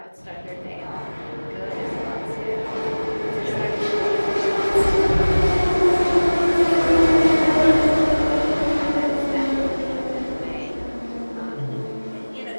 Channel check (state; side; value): inverted; both; correlation -1.00